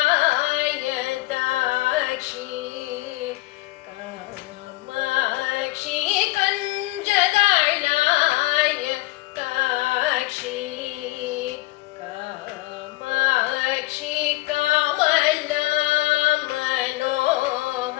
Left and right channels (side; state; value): right; quieter; 20.1 dB